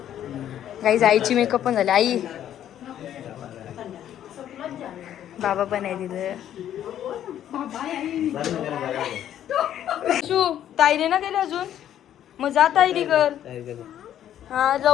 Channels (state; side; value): quieter; right; 10.9 dB